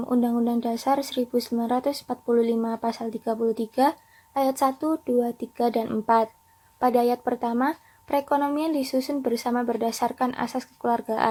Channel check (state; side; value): identical; both; correlation 1.00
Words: Undang-Undang Dasar 1945 Pasal 33, ayat 1, 2, 3, dan 4. Pada ayat pertama, perekonomian disusun bersama berdasarkan asas